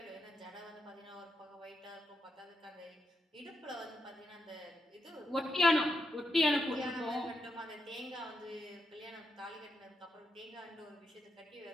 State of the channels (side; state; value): both; normal; correlation 0.83